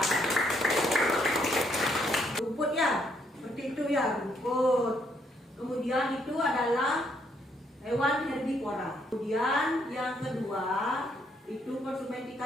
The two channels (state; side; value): normal; both; correlation 0.72